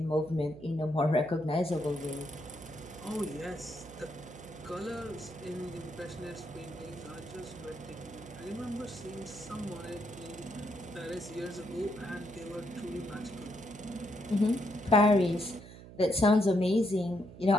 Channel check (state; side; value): noise; right; hum, 16 dB below the sound